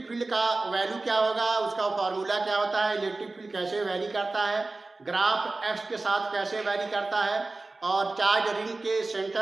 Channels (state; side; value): quieter; left; 3.3 dB